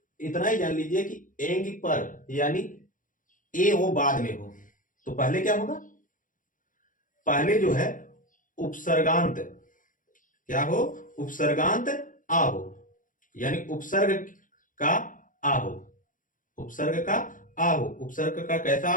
इतना ही जान लीजिए कि एंग पर यानी ए वो बाद में हो, तो पहले क्या होगा, पहले जो है उपसर्गांत क्या हो, उपसर्गांत आ हो, यानी उपसर्ग का आ हो, उपसर्ग का आ हो। उपसर्ग का कैसा,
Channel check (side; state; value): right; late; 0.38 ms